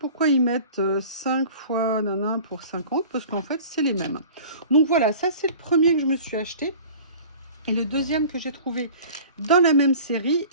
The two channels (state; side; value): inverted; both; correlation -0.43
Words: ils mettent 5 fois nanan pour 50, parce qu'en fait, c'est les mêmes. Donc, voilà, ça, c'est le premier que je me suis acheté. Et le deuxième que j'ai trouvé dans la même série,